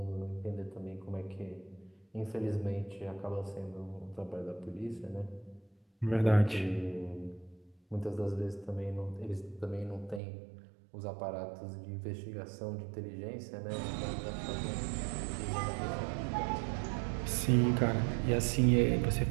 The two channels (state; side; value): drops out; left; at 10.2 s